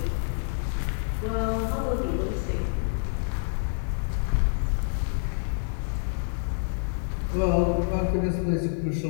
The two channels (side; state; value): right; silent; digital silence